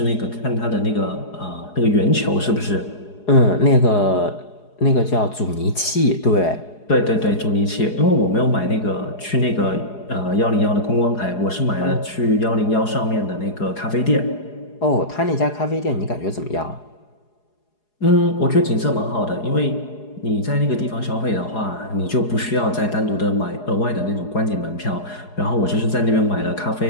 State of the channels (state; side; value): late; right; 4.8 ms